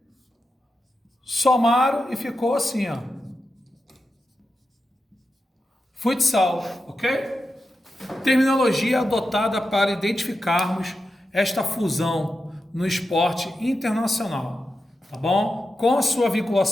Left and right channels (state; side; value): normal; both; correlation 0.89